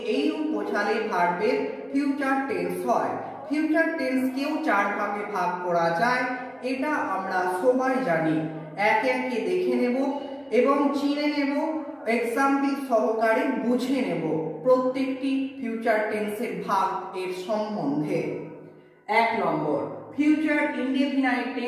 এইরূপ বোঝালে ভার্বের ফিউচার টেন্স হয়। ফিউচার টেন্সকেও চার ভাগে ভাগ করা যায়, এটা আমরা সবাই জানি। একে একে দেখে নেব এবং চিনে নেব, এক্সাম্পল সহকারে বুঝে নেব প্রত্যেকটি ফিউচার টেন্সের ভাগ এর সম্বন্ধে। 1 নম্বর, ফিউচার ইনডেফিনাইট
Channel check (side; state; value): both; identical; correlation 1.00